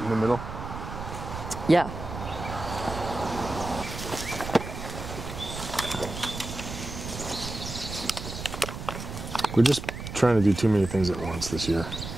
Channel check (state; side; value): noise; right; rumble, 8 dB below the sound